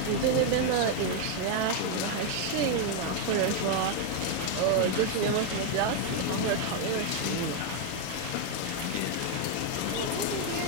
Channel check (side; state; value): both; different; correlation 0.01